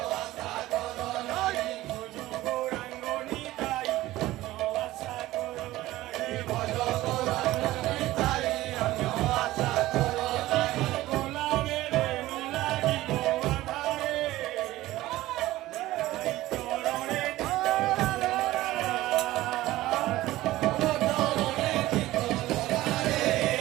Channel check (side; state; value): left; quieter; 16.6 dB